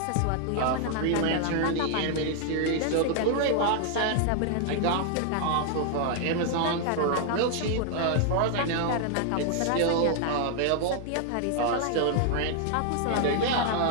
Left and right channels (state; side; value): different; both; correlation 0.00